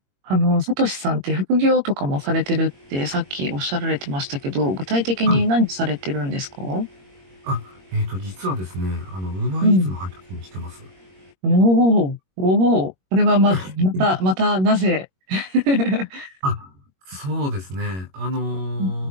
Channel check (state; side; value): late; left; 21 ms